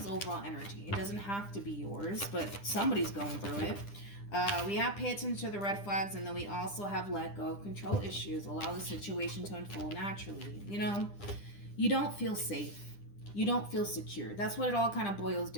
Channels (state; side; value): late; right; 10 ms